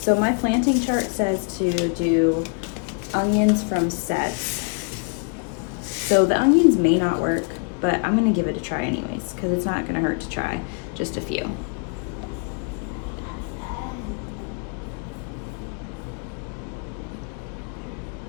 my planting chart says to do onions from sets. So the onions may not work, but I'm gonna give it a try anyways, because it's not gonna hurt to try just a few.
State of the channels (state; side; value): quieter; right; 39.9 dB